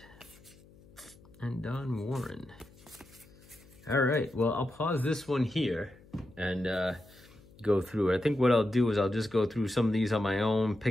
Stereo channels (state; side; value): noise; left; hum, 25 dB below the sound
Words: and Don Warren. All right, well, I'll pause this one here and go through it. I think what I'll do is I'll just go through some of these on my own,